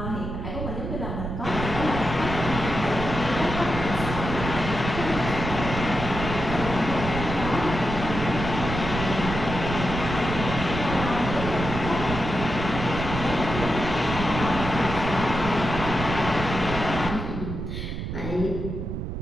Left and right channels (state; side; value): noise; right; rumble, 5 dB below the sound